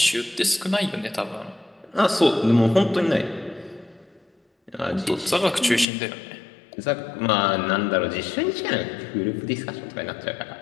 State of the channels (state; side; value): drops out; right; at 5.9 s